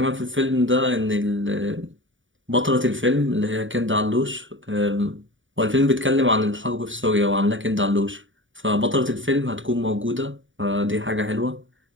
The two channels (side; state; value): left; late; 0.56 ms